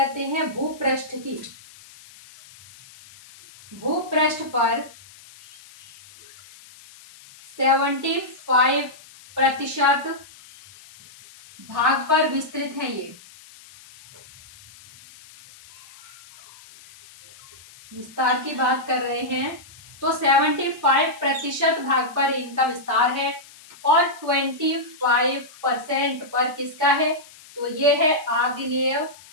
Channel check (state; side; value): noise; left; hiss, 22 dB below the sound